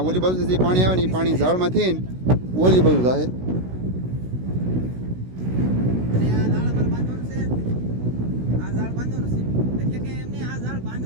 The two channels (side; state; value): left; late; 16 ms